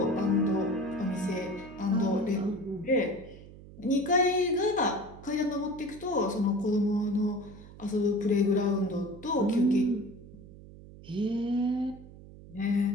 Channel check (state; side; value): noise; right; hum, 18 dB below the sound